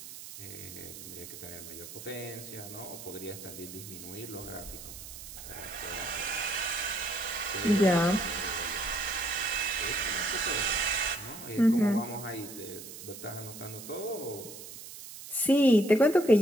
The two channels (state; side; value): noise; right; hiss, 13 dB below the sound